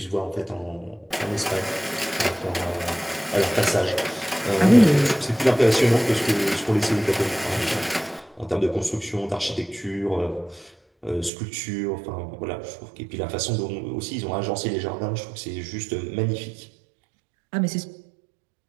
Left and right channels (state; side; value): drops out; left; at 11.3 s